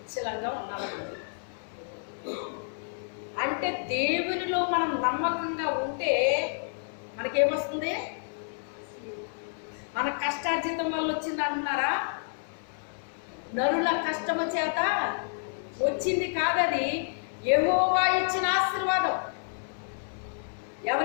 ఉన్నాను. అంటే దేవునిలో మనం నమ్మకంగా ఉంటే మనకేమొస్తుంది? మన కష్టార్జితం వల్ల వచ్చింది అంటున్నారా? నరుల కష్టము చేత వచ్చింది కాదది, యెహోవా ఇచ్చిన ఆశీర్వాదం.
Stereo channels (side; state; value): right; silent; 58 dB below the other